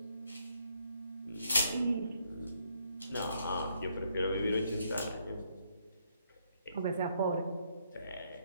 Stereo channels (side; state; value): both; inverted; correlation -0.72